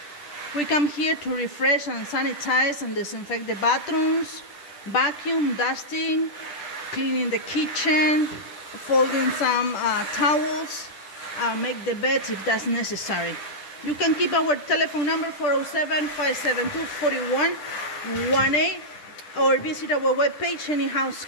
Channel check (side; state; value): right; late; 10 ms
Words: We come here to refresh and sanitize and disinfect the bathrooms, vacuum, dusting, cleaning the kitchen, folding some towels, make the beds if that's necessary. You can keep our telephone number 407-572-4118 or visit our webpage